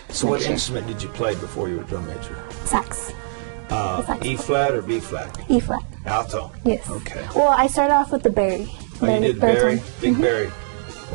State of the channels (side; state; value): left; silent; digital silence